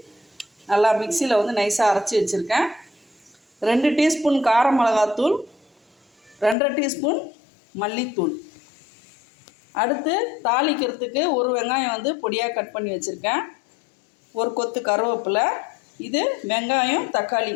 நல்லா மிக்சியில் நைஸாக அரைச்சி வச்சுருக்கேன். 2 டீஸ்பூன் கார மிளகாத்தூள், 2.5 டீஸ்பூன் மல்லித்தூள். அடுத்து தாளிக்கிறதுக்கு ஒரு வெங்காயம் பொடியாக கட் பண்ணி வச்சுருக்கேன். ஒரு கொத்து கருவேப்பிலை. இது வெங்காயம் தக்காளி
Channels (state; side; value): drops out; right; at 6.6 s